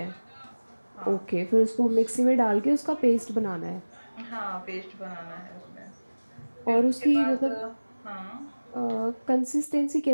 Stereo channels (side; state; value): both; inverted; correlation -1.00